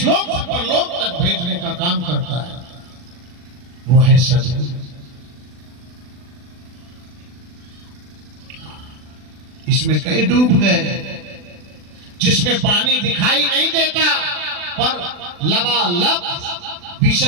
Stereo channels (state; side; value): late; left; 40 ms